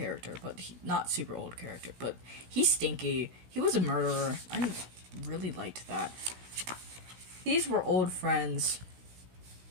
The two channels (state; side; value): late; left; 16 ms